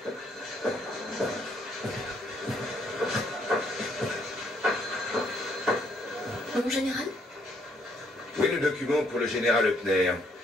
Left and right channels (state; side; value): normal; both; correlation 0.70